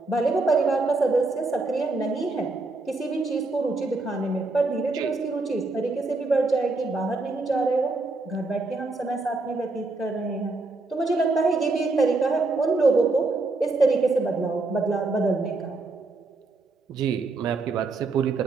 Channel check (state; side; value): quieter; left; 3.4 dB